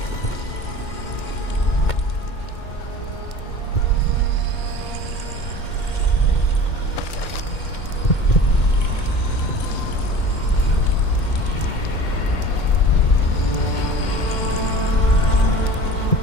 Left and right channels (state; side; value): late; right; 2.1 ms